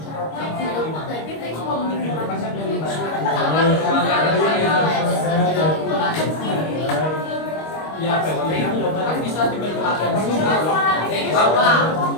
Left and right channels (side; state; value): right; late; 25 ms